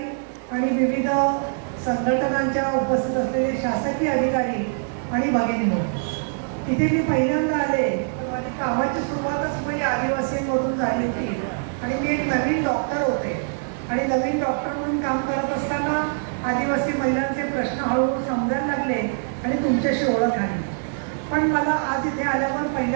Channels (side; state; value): left; silent; digital silence